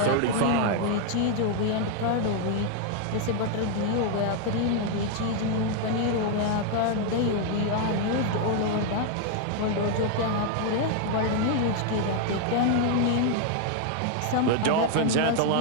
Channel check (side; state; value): both; different; correlation 0.00